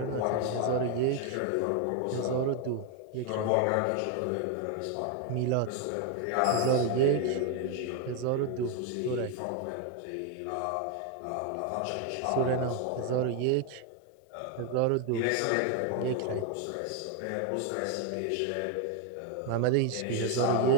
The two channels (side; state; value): both; different; correlation 0.01